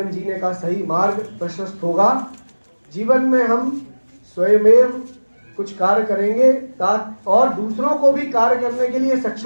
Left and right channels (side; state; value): both; inverted; correlation -1.00